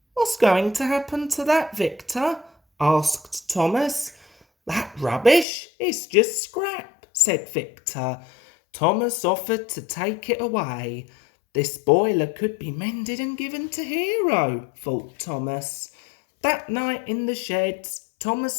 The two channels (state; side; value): drops out; right; at 5.5 s